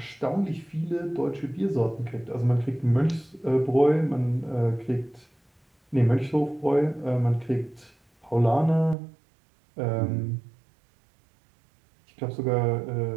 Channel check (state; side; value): drops out; left; at 9.0 s